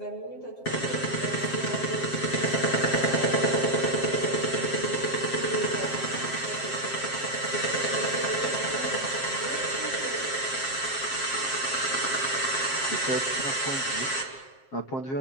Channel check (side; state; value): right; late; 7.5 ms